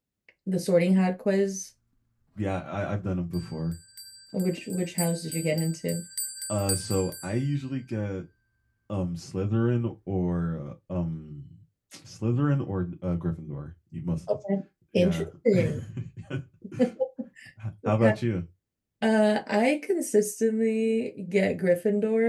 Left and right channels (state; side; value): identical; both; correlation 1.00